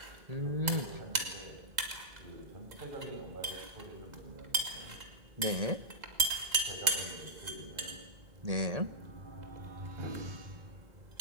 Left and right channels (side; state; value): left; late; 2.0 ms